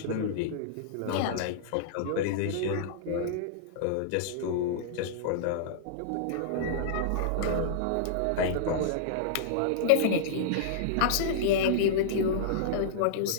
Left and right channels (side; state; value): both; different; correlation -0.02